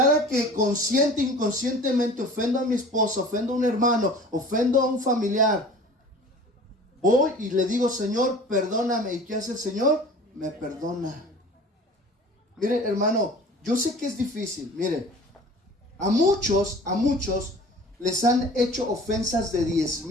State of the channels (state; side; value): normal; both; correlation 0.43